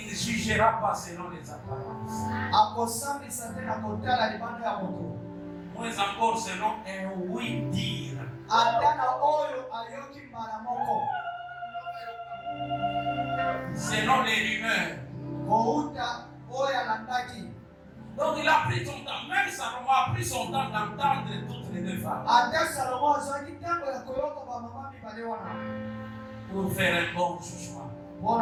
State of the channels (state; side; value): identical; both; correlation 1.00